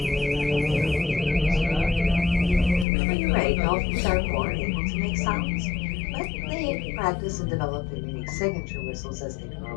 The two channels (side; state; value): right; drops out; at 2.9 s